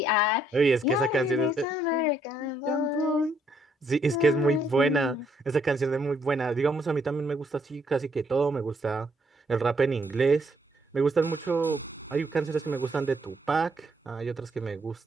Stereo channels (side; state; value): both; normal; correlation 0.71